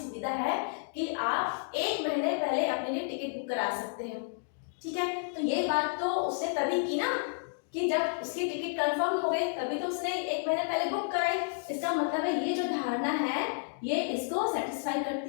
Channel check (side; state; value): right; silent; digital silence